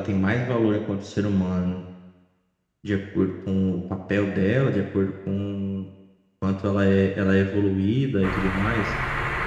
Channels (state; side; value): identical; both; correlation 1.00